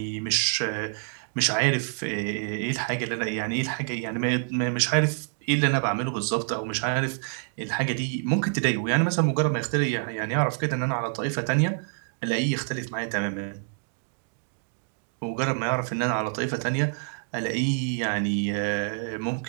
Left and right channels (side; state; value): left; silent; 60 dB below the other